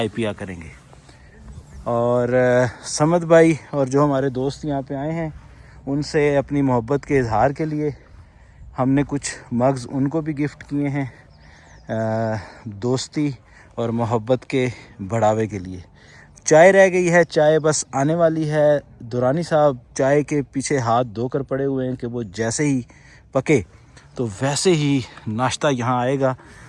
पिया करेंगे। और समद भाई और जो हमारे दोस्त यहाँ पे आए हैं उनसे अपनी मोहब्बत के इजहार के लिए हमने कुछ मग्स उनको भी गिफ्ट किए हैं, दोस्ती और मोहब्बत के बढ़ावे के लिए। चाय रह गई है, चाय बस आने वाली है। दुरानी साहब चाय के पीछे हाथ धोकर पड़े हुए हैं कि वो जैसे ही पके तो वैसे ही नाश्ता यहाँ आएगा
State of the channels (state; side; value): identical; both; correlation 1.00